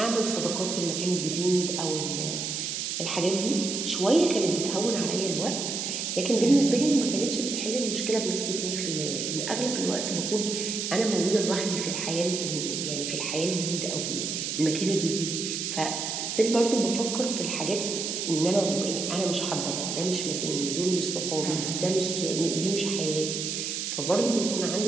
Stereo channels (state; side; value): noise; right; hiss, 3 dB below the sound